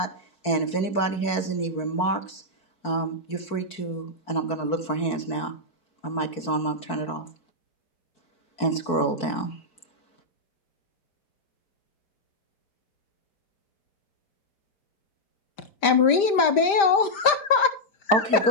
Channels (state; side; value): late; right; 5.0 ms